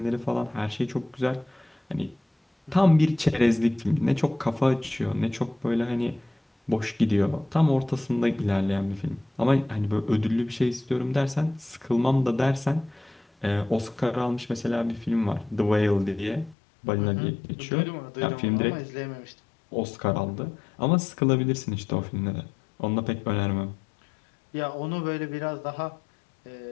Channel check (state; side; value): drops out; right; at 16.6 s